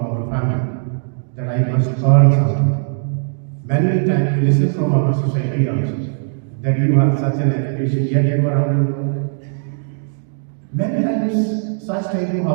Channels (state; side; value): silent; left; digital silence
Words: family that I must earn something. Many times we listen from our society also, that you have such an education, yet you are unemployed. Many times, such type of